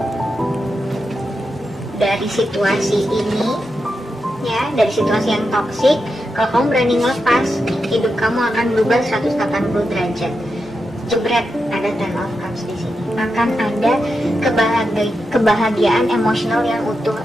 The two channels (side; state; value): both; normal; correlation 0.87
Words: Dari situasi ini ya, dari situasi yang toksik, kalau kamu berani ngelepas, hidup kamu akan berubah 180 derajat. Jebret, ada Ten of Cups di sini. Akan ada kebahagiaan emosional yang utuh.